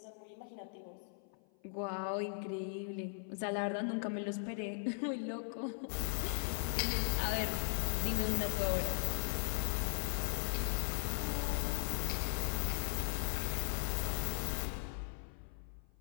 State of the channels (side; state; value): right; silent; 52 dB below the other